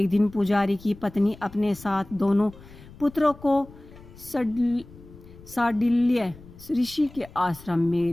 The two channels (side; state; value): left; noise; rumble, 20 dB below the sound